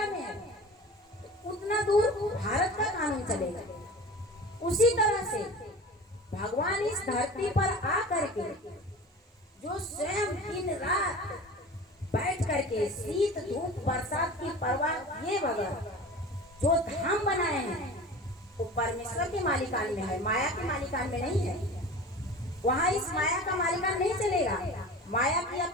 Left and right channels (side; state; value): both; normal; correlation 0.37